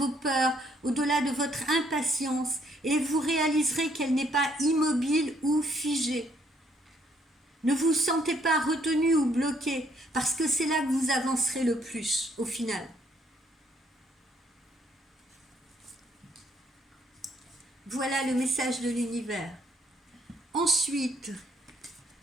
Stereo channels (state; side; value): normal; both; correlation 0.69